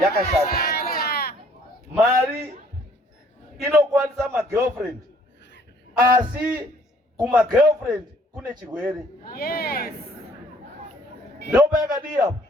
yakashata. Mari inokwanisa magirlfriend asi kumagirlfriend kune chirwere. Ndopa yakadii apo.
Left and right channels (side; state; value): both; normal; correlation 0.60